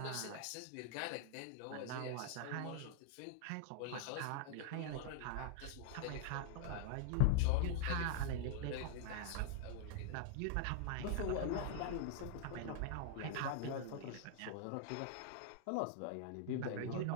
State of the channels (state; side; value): different; both; correlation -0.01